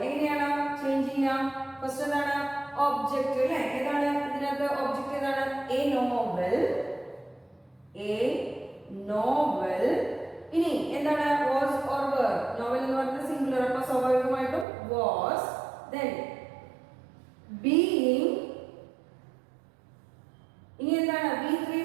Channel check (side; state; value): left; drops out; at 14.7 s